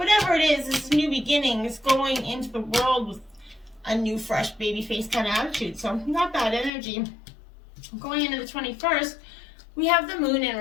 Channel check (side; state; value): right; drops out; at 6.7 s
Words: it is, it's new beginnings, going into the world with a new, fresh, baby face kind of attitude. So not bad energy. Going into the 21st, we have the Moon in